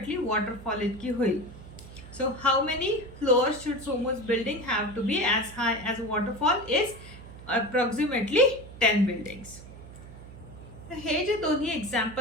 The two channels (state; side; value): noise; right; hum, 16 dB below the sound